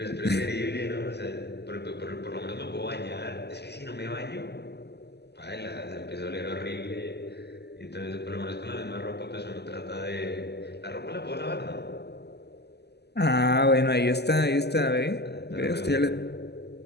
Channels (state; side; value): late; right; 0.49 ms